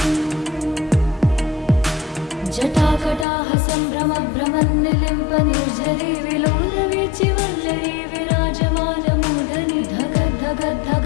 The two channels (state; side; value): drops out; right; at 3.2 s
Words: जटाकटाह सम्भ्रमभ्रमन्निलिम्प निर्झरी विलोलवीचिवल्लरी विराजमानमूर्धनि